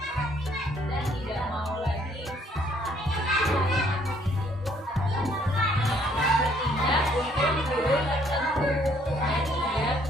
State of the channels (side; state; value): both; normal; correlation 0.65